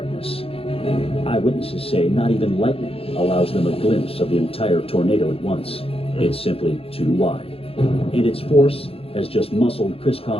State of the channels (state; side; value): late; right; 0.27 ms